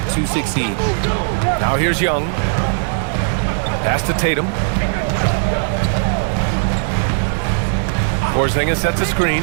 succeed. Now here's Young. Pass to Tatum. Porzingis sets a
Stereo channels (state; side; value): silent; left; 65 dB below the other